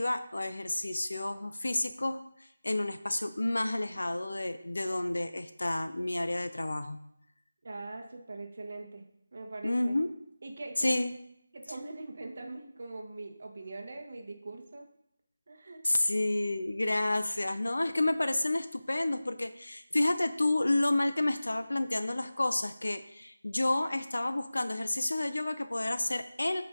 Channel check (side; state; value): both; inverted; correlation -0.98